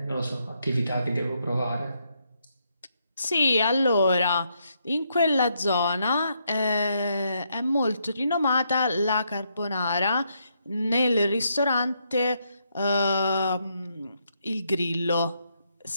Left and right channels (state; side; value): inverted; both; correlation -0.77